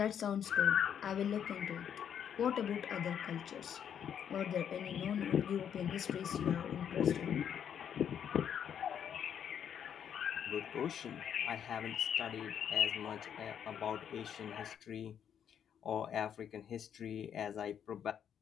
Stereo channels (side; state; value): right; quieter; 8.7 dB